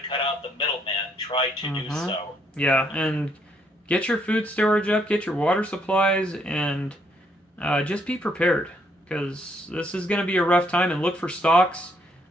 cut out the middleman, try to do so. Yeah, and get your food storage up, get your water supplies, and just be prepared, because this is going to be a rough time. And look for stocks,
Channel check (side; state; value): both; normal; correlation 0.71